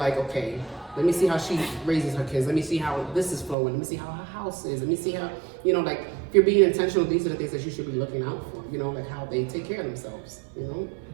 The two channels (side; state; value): left; drops out; at 3.6 s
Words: okay, let me see how she raises her kids. Let me see how this is flowing. Let me see how her house is. Let me see how, you know, like if you're being intentional, these are the things that you should be looking out for. You know, like how they take care of themselves. You know.